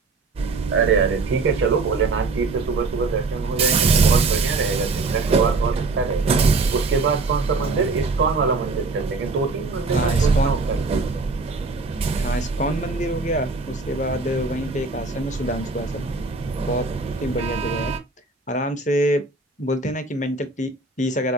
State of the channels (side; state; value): left; quieter; 3.7 dB